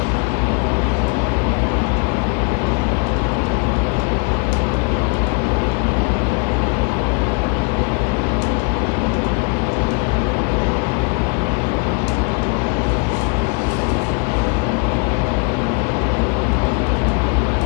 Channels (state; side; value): quieter; right; 34.5 dB